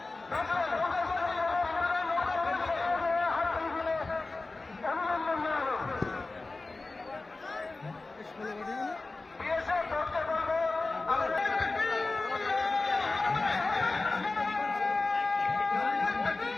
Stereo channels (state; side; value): quieter; right; 3.4 dB